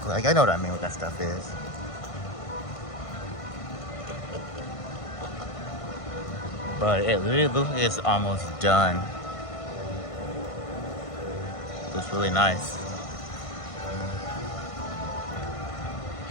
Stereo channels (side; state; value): right; late; 1.5 ms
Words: like I know what I mean, what that stuff is. But it really looks like it's almost done. Looks really nice.